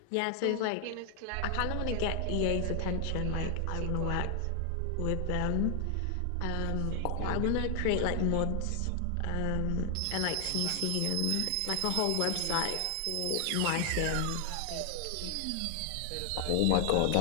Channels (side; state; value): both; different; correlation 0.00